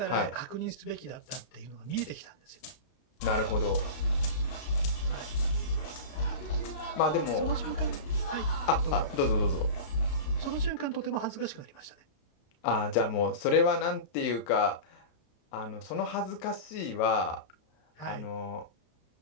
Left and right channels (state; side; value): late; right; 32 ms